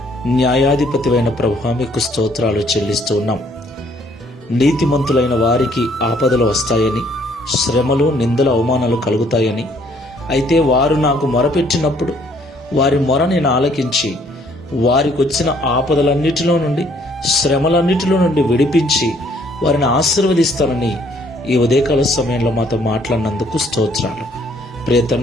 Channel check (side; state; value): both; normal; correlation 0.64